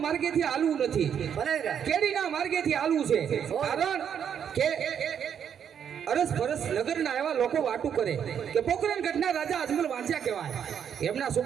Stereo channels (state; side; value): quieter; left; 8.3 dB